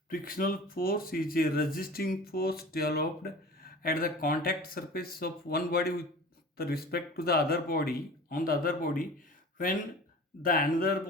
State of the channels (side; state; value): both; normal; correlation 0.39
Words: Frictional force is a resisting force developed at the contact surface of one body with respect to the other body, on the other body, when the another